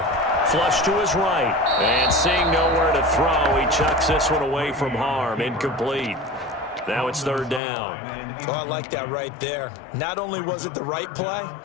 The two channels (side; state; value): right; drops out; at 7.6 s